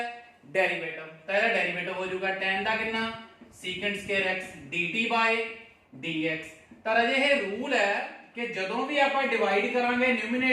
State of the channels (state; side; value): identical; both; correlation 1.00